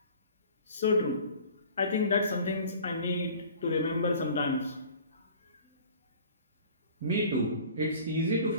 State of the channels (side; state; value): both; inverted; correlation -0.46